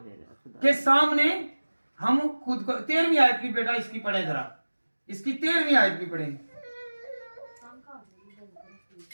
के सामने हम खुद को 13वीं आयत भी बेटा इसकी पढ़े जरा, इसकी 13वीं आयत भी पढ़े।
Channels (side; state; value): both; inverted; correlation -1.00